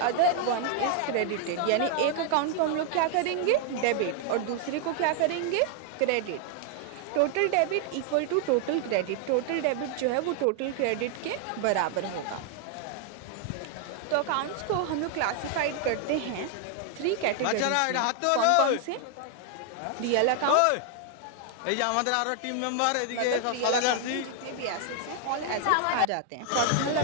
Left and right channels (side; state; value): both; different; correlation 0.00